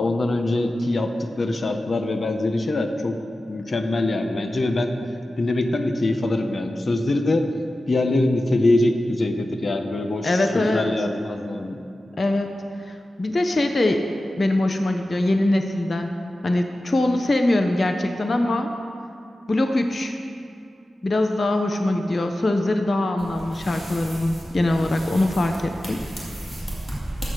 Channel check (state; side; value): normal; both; correlation 0.94